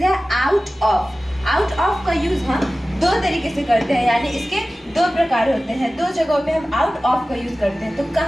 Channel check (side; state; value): both; normal; correlation 0.96